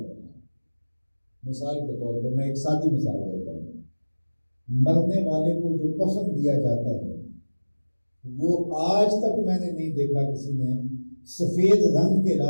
مثال کے طور پر میں ایک سادی مثال دیتا ہوں، مرنے والے کو جو کفن دیا جاتا ہے وہ آج تک میں نے نہیں دیکھا کسی نے سفید رنگ کے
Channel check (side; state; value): both; inverted; correlation -1.00